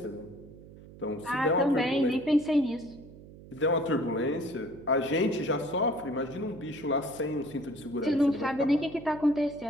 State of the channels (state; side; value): noise; right; hum, 18 dB below the sound